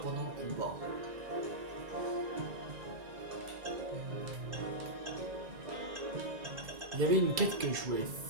pendant le combat. Il y avait une quête que je voulais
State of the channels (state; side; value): late; left; 2.3 ms